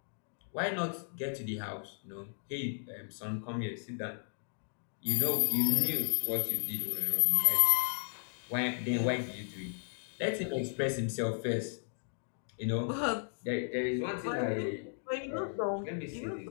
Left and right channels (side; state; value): right; silent; digital silence